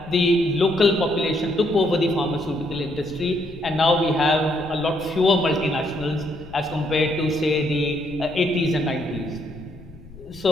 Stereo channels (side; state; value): left; noise; rumble, 20 dB below the sound